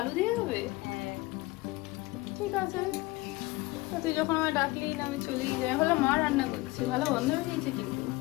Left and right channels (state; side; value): quieter; right; 21.6 dB